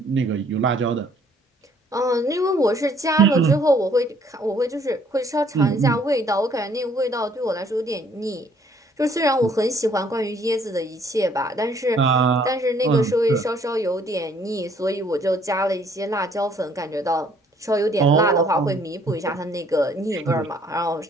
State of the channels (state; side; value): normal; both; correlation 0.62